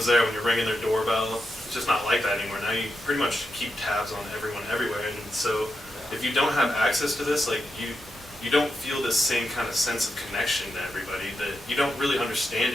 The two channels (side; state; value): both; normal; correlation 0.87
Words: there when you're ringing their doorbell. It's just not like that anymore. Now you pretty much keep tabs on everyone everywhere, and so if you don't have access to this, like you don't feel this same kind of sense of connection to everybody, that you don't really understand